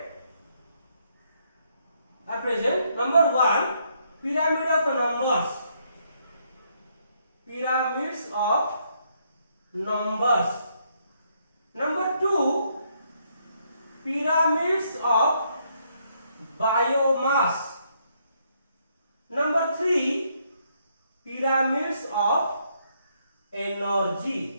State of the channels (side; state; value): both; inverted; correlation -0.73